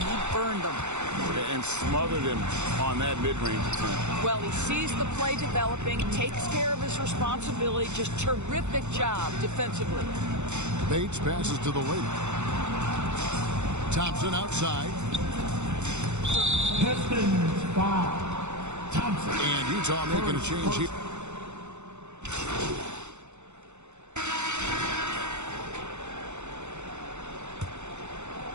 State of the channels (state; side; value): late; left; 0.83 ms